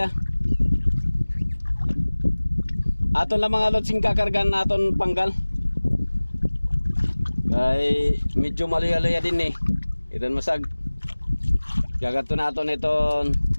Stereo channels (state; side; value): inverted; both; correlation -1.00